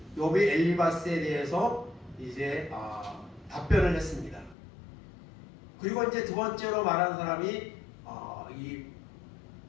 욥이 엘리바스에 대해서 이제 답변을 했습니다. 그리고 이제 두 번째로 말한 사람이 이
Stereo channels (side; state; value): right; drops out; at 4.5 s